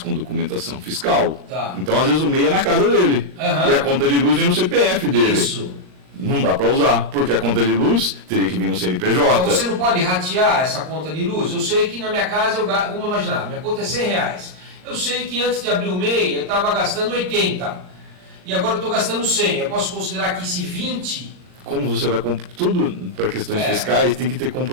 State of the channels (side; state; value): left; late; 39 ms